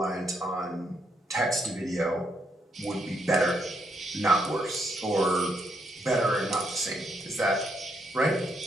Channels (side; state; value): both; normal; correlation 0.77